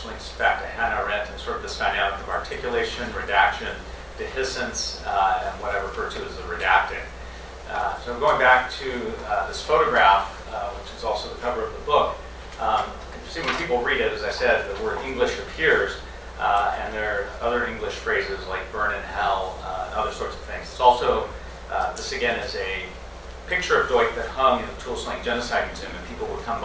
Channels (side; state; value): both; identical; correlation 1.00